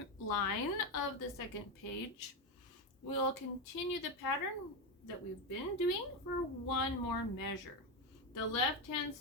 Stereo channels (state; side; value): normal; both; correlation 0.11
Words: line of the second page, we'll continue the pattern that we've been doing for one more measure. The left hand